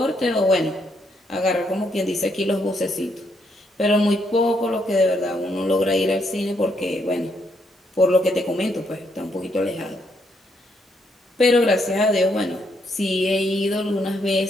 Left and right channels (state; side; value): normal; both; correlation 0.75